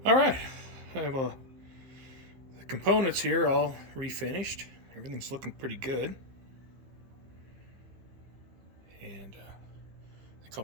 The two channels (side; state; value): left; late; 15 ms